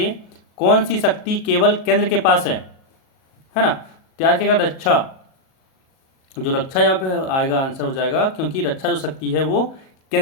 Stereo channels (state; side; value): late; right; 37 ms